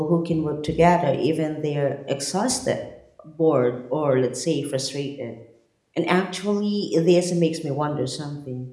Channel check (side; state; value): both; identical; correlation 1.00